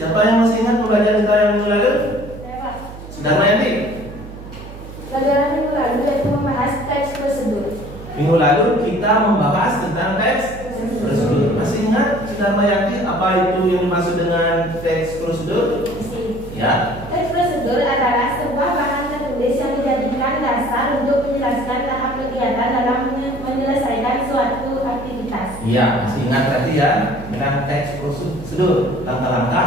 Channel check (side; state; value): right; noise; hum, 14 dB below the sound